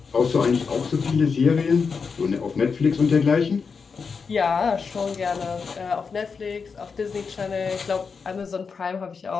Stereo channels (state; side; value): quieter; right; 5.4 dB